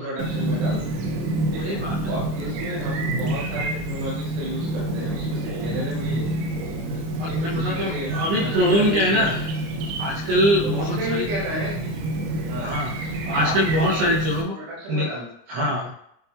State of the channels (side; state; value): left; late; 25 ms